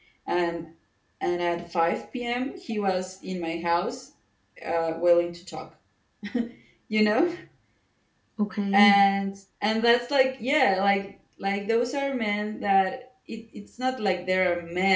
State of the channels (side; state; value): both; identical; correlation 1.00